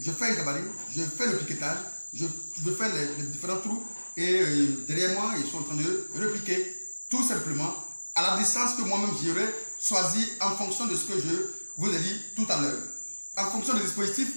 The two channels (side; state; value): both; inverted; correlation -1.00